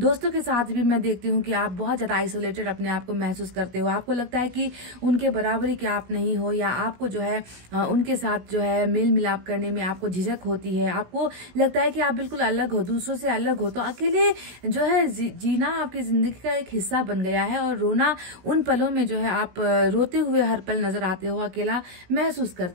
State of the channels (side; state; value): left; late; 17 ms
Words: के साथ भी मैं देखती हूँ कि आप बहुत ज्यादा आइसोलेटेड अपने आप को महसूस करते हो, आपको लगता है कि उनके बराबरी के आप नहीं हो, या आपको जो है उनके साथ जो है मेल मिलाप करने में आपको झिझक होती है, आपको लगता है कि आप बिल्कुल अलग हो, दूसरों से अलग हो। तो अकेले जो है जीना आपकी जिंदगी का एक हिस्सा बन गया है, और रोना उन पलों में जो है आप रोते हुए हर पल नजर आते हो, अकेला महसूस